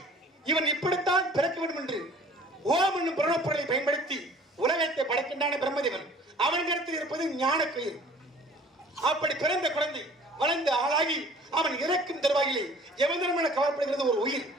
இவன் இப்படித்தான் பிறக்க வேண்டும் என்று ஓம் என்னும் புரணப்பொருளை பயன்படுத்தி உலகத்தை படைக்கின்றான பிரம்மதேவன். அவன் கருத்தில் இருப்பது ஞான கயிறு. அப்படி பிறந்த குழந்தை வளர்ந்து ஆளாகி அவன் இறக்கும் தருவாயிலே யமதர்மன கவரப்படுகிறது ஒரு உயிர்.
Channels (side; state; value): both; normal; correlation 0.50